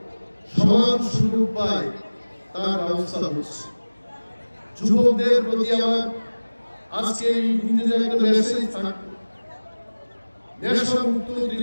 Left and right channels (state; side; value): inverted; both; correlation -1.00